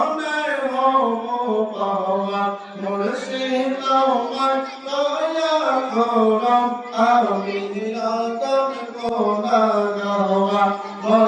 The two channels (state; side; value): identical; both; correlation 1.00